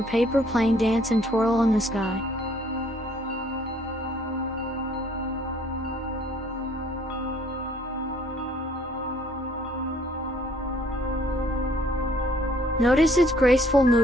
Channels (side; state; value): both; normal; correlation 0.61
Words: paper plane dance and twirl in the sky. Notice its graceful